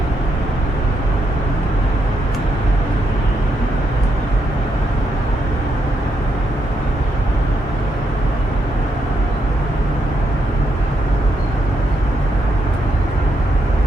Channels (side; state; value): both; normal; correlation 0.79